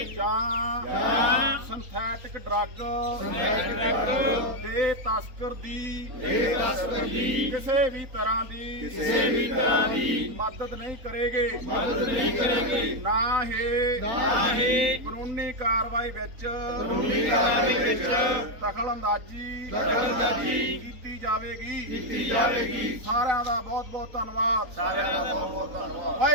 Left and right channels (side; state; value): left; late; 3.9 ms